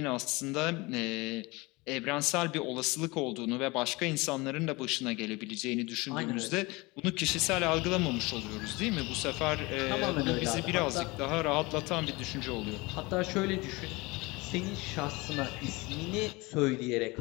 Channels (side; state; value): right; quieter; 24.0 dB